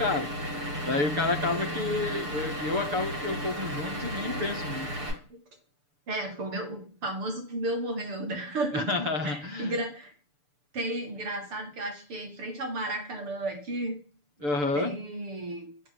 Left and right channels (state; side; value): late; left; 6.8 ms